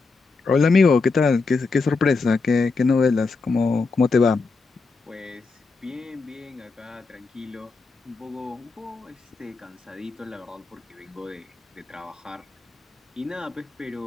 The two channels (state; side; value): quieter; right; 4.1 dB